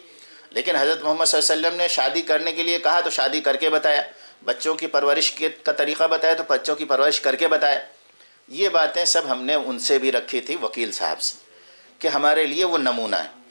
لیکن حضرت محمد صلی اللہ علیہ وسلم نے شادی کرنے کے لیے کہا تو شادی کر کے بتایا، بچوں کی پرورش کا طریقہ بتایا تو بچوں کی پرورش کر کے بتایا۔ یہ باتیں سب ہم نے ان سے بھی رکھی تھی، وکیل صاحب سے، کہ ہمارے لیے وہ نمونہ ہے۔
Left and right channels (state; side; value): inverted; both; correlation -1.00